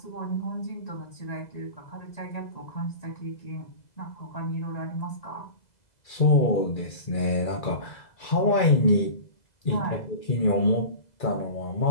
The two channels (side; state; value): right; late; 2.0 ms